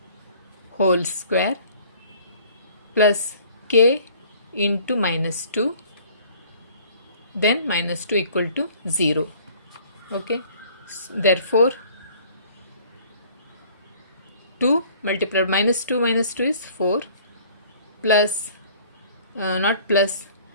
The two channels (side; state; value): both; inverted; correlation -0.54